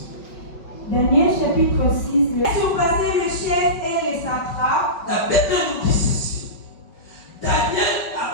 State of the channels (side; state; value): right; late; 5.5 ms